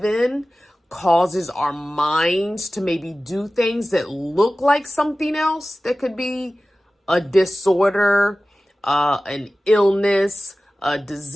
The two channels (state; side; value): normal; both; correlation 0.96